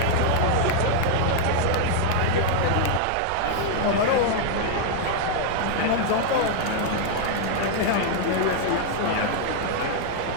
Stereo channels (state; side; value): different; both; correlation 0.00